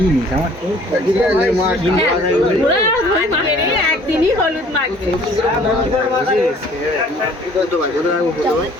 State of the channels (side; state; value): both; normal; correlation 0.54